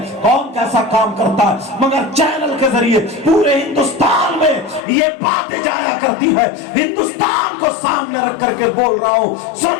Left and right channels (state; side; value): drops out; right; at 4.8 s